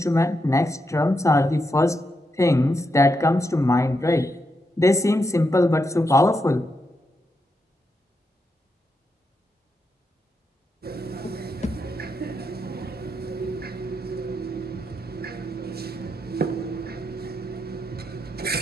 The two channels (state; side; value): normal; both; correlation 0.83